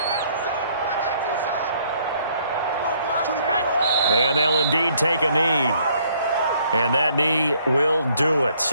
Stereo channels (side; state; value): both; inverted; correlation -0.65